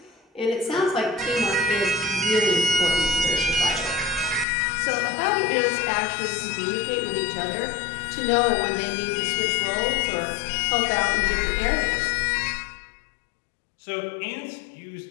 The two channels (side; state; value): right; drops out; at 4.5 s